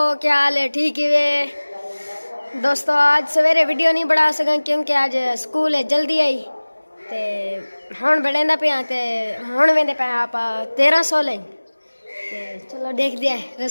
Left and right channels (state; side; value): inverted; both; correlation -1.00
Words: क्या हाल है? ठीक है वे दोस्तों। आज सवेरे वीडियो नहीं बना सका क्योंकि आज स्कूल है जल्दी आई ते हुण बड़ेंदा पे ते हुण वेंदे पे आप 1300 लें ते चलो देख दिया